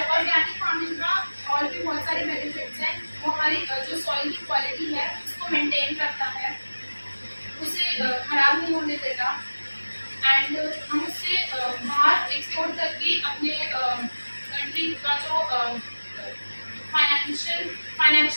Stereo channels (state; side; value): inverted; both; correlation -1.00